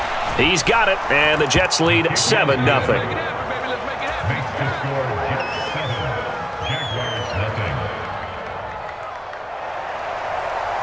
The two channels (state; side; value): identical; both; correlation 1.00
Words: He's got it, and the Jets lead 7-0.